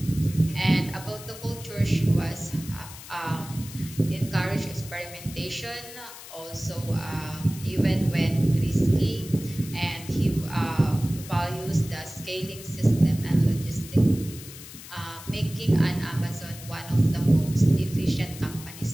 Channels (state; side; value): noise; left; hiss, 15 dB below the sound